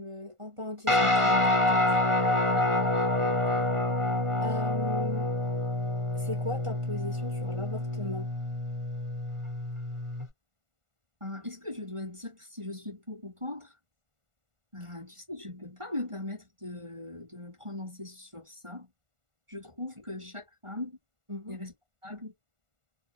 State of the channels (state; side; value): late; left; 1.4 ms